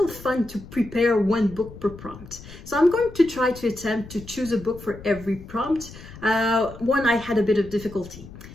fun to prepare 1 book per prompt. So I'm going to try to attempt to choose a book for every prompt. One I had a bit of difficulty.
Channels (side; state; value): left; noise; rumble, 16 dB below the sound